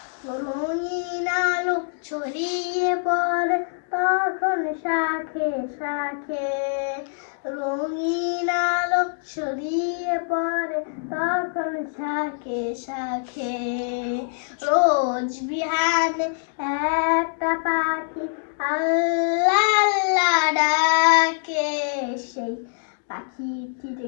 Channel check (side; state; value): right; silent; digital silence